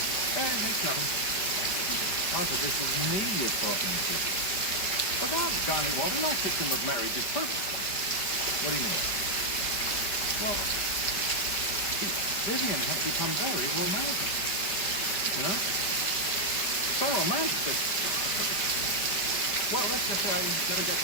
It's nothing. Arthur, this is me you're talking to. Well, doggone it, Walter. No system of marriage is perfect. What do you mean? Well, see, Vivian has become very romantic. You know? So romantic that... Well, let's just say I never get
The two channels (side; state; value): right; late; 5.0 ms